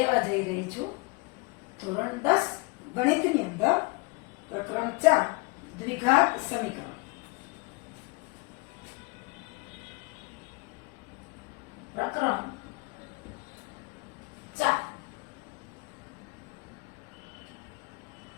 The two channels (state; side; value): quieter; right; 28.4 dB